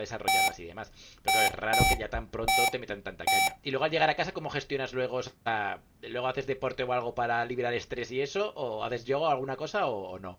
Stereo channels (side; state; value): both; identical; correlation 1.00